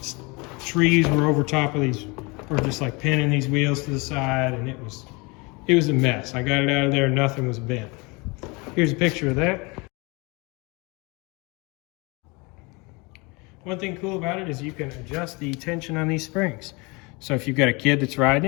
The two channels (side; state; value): right; quieter; 27.3 dB